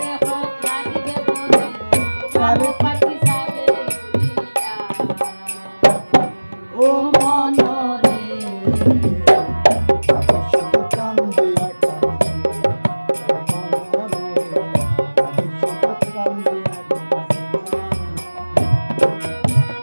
ও মন রে শুধু কান্দিয়া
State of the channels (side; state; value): both; inverted; correlation -1.00